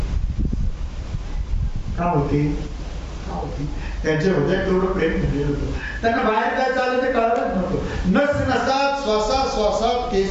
का होते, का होते? त्यांच्या हृदयात तेवढं प्रेम भरलेलं होतं. त्यांना बाहेर काय चाललं ते कळतच नव्हतं. नस नसात, श्वासात श्वासात,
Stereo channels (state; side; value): identical; both; correlation 1.00